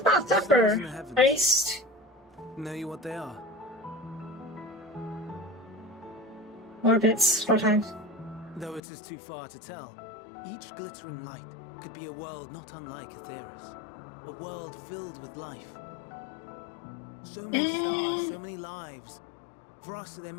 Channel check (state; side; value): drops out; right; at 8.8 s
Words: about suffer. Stars in the heavens. At least Know you what they are? orbits 4 times. Though it is too far to tell, each glittering light could be a world not unlike Aetheris. A world filled with life. So many stars, so many lives. For us, there